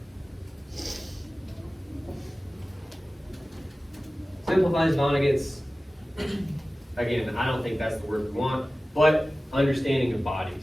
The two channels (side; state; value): both; normal; correlation 0.96